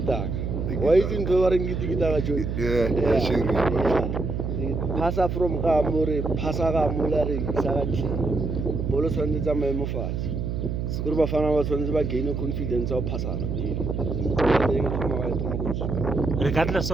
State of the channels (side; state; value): right; noise; hum, 2 dB below the sound